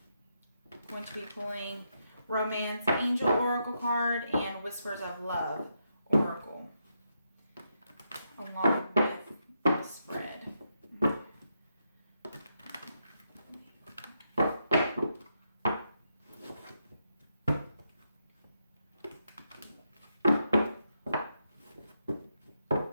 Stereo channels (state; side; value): inverted; both; correlation -0.82